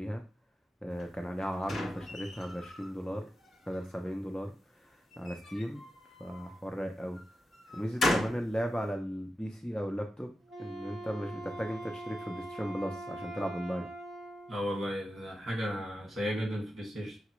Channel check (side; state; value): both; normal; correlation 0.90